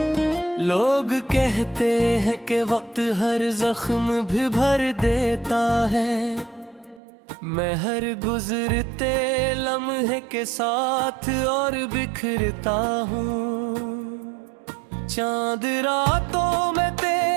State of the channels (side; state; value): left; drops out; at 7.0 s